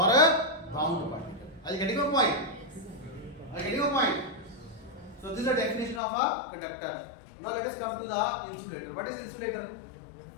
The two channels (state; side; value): drops out; right; at 6.0 s